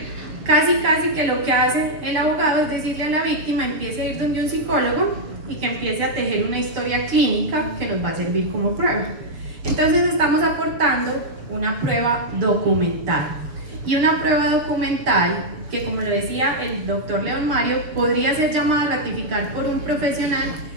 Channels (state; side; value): late; left; 7.0 ms